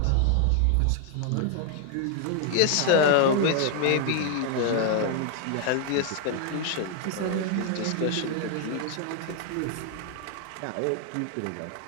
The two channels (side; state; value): both; different; correlation 0.00